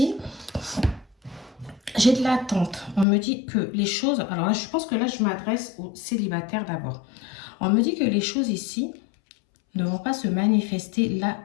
j'ai de l'attente. On me dit que les choses... Alors là, je pense que là, je m'adresse aux célibataires d'abord. On me dit que les choses ici ne vont pas se manifester là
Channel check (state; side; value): drops out; right; at 3.1 s